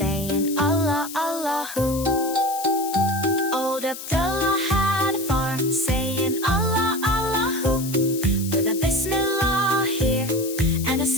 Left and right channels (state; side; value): noise; left; hiss, 10 dB below the sound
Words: Allah, Allahu. Old Abdullah had a farm, saying Allah, Allahu, with a Bismillah here and a